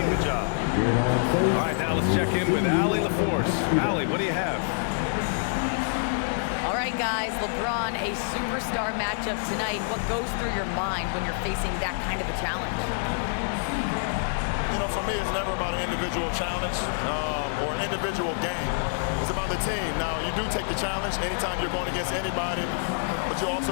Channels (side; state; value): right; silent; 60 dB below the other